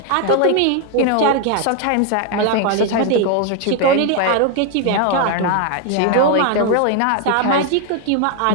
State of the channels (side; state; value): both; different; correlation 0.01